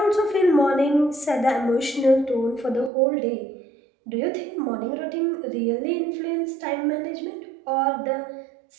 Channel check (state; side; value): drops out; left; at 2.9 s